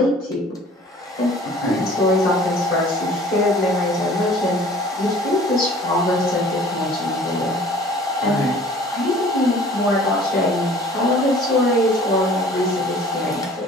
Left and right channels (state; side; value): normal; both; correlation 0.49